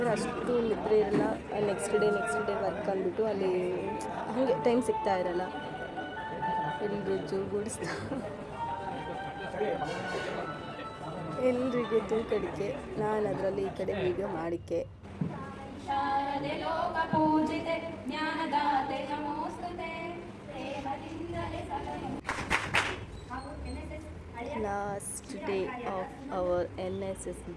ಅಷ್ಟು ನಿದ್ರೆ ಇರಲ್ಲ. ನೆಕ್ಸ್ಟ್ ಡೇ ವರ್ಕ್ ಅಂದ್ಬಿಟ್ಟು ಅಲ್ಲಿ ಹಾಗೆ ಟೈಮ್ ಸಿಗ್ತಾ ಇರಲ್ಲ. ಎಲ್ರಿಗೂ ಜೂಗೂಡಿಸ್ತಾ ಎಲ್ರಿಗೂ ತೂಕಡಿಕೆ. ನಾನು ಅದರಲ್ಲಿ ಈ ಕಡೆ ವೀಡಿಯೋ ಮಾಡಿಕೆ. Last day of our NSS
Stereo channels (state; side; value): identical; both; correlation 1.00